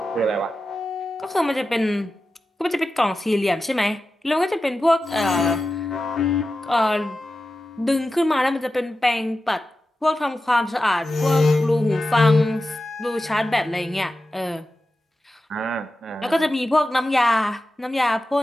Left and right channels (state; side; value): normal; both; correlation 0.92